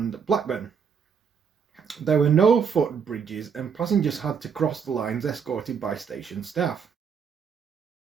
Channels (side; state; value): left; quieter; 6.6 dB